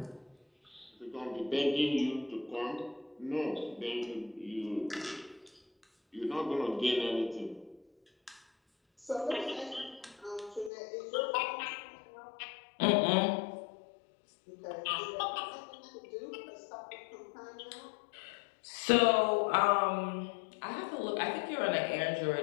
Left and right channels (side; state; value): right; drops out; at 10.7 s